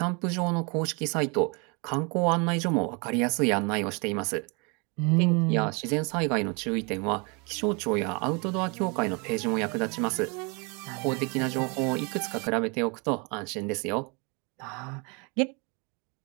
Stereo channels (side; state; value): left; quieter; 31.7 dB